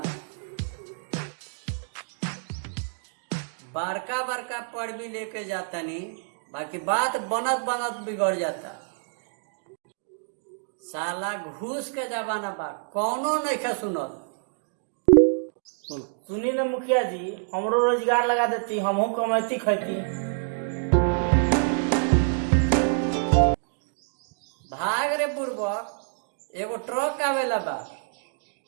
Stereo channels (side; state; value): left; silent; 60 dB below the other